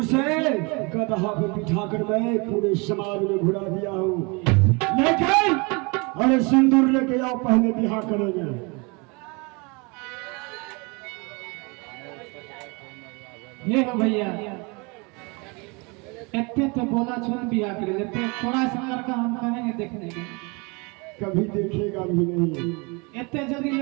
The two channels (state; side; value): quieter; left; 29.3 dB